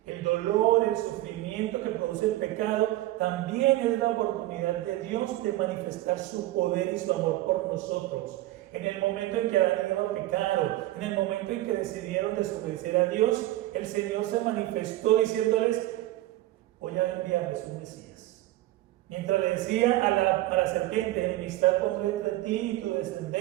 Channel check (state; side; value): quieter; left; 16.3 dB